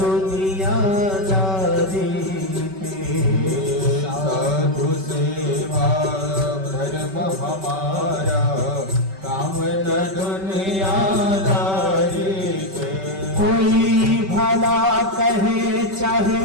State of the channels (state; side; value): late; left; 5.2 ms